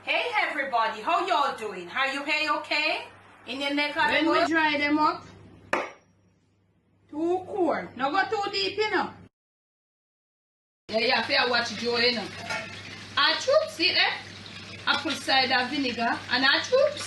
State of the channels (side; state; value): both; identical; correlation 1.00